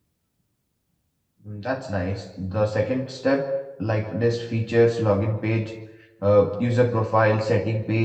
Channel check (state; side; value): identical; both; correlation 1.00